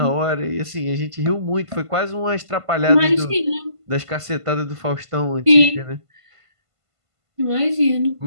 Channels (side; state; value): left; late; 1.5 ms